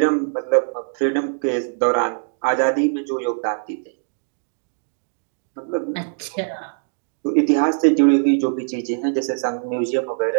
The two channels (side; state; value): left; silent; digital silence